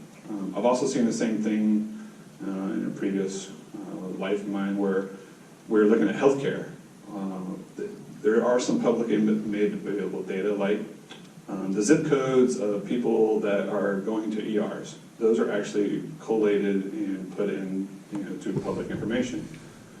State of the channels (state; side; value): identical; both; correlation 1.00